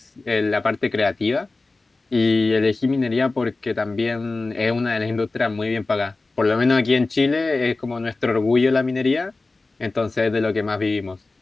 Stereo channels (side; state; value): right; quieter; 3.4 dB